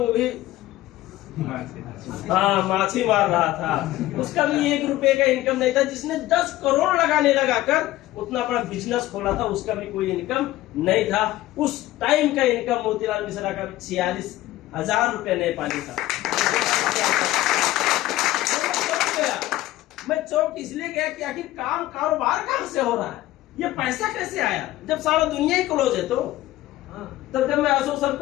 भी हाँ माछी मार रहा था, उसका भी 1 रुपए का इनकम नहीं था। जिसने 10 करोड़ लगाने लगाकर उतना बड़ा बिजनेस खोला था, उसका भी कोई इनकम नहीं था। उस टाइम का इनकम मोतीलाल मिश्रा का 46,000 रुपए नेपाली था। मैं चौक इसलिए गया कि आखिर काम कारोबार कहां से हो रहा है, ये पैसा कैसे आया, जब सारा दुनिया ही क्लोज है। तो तब जब मैं अशोक सर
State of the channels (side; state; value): right; quieter; 15.9 dB